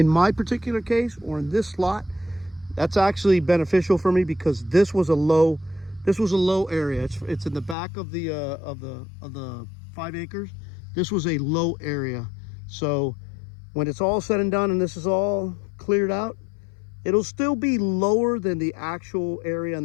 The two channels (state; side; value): drops out; right; at 7.8 s